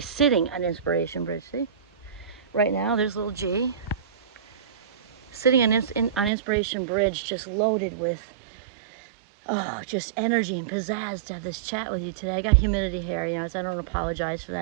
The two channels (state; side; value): drops out; left; at 6.3 s